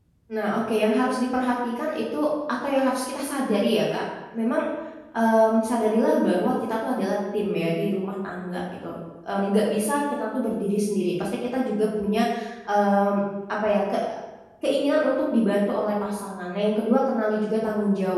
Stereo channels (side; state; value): both; identical; correlation 1.00